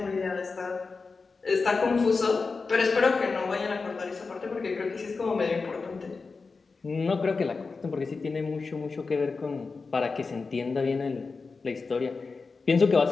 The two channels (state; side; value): quieter; right; 4.4 dB